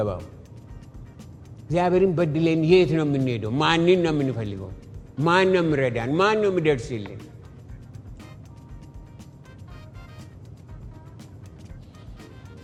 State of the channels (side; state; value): both; identical; correlation 1.00